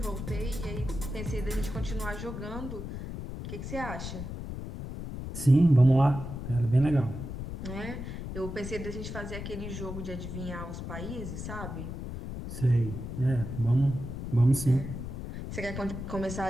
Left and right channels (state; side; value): noise; left; rumble, 7 dB below the sound